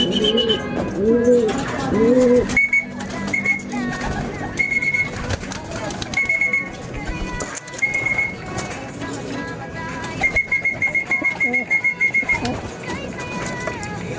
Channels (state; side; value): identical; both; correlation 1.00